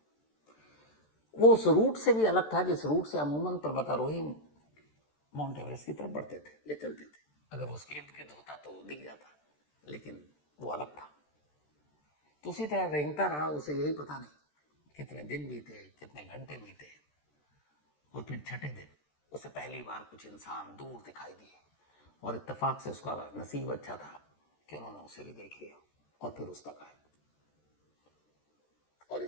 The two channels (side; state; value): right; late; 13 ms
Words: वो उस रूट से भी अलग था जिस रूट से अमूमन पर्वतारोही माउंट एवरेस्ट की तरफ बढ़ते थे या चलते थे। अगर वो उसके इर्द गिर्द होता तो दिख जाता, लेकिन वो अलग था। तो उसी तरह रेंगता रहा। उसे यही पता नहीं कितने दिन बीते, कितने घंटे बीते, और फिर छठे दिन उसे पहली बार कुछ इंसान दूर दिखाई दिए और इत्तेफाक से उसका नसीब अच्छा था कि उन्होंने उसे भी देख लिया और फिर उस तक आए और